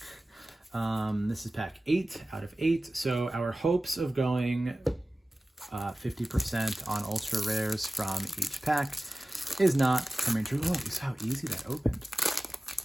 This is pack 8 out of 8, so our hopes of going 50% on ultra rares from each pack is not coming true. Oh, you saw how easy that opened.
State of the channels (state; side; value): normal; both; correlation 0.96